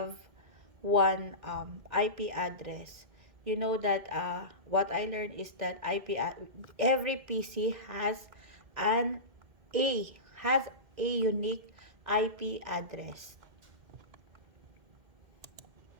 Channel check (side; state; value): left; late; 2.1 ms